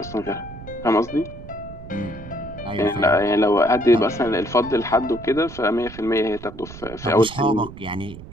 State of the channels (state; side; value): noise; right; rumble, 15 dB below the sound